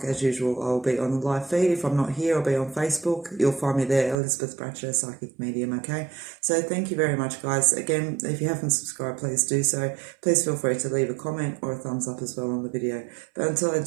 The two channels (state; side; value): drops out; left; at 4.2 s